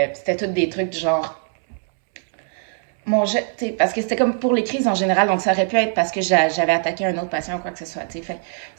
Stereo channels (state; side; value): silent; left; 65 dB below the other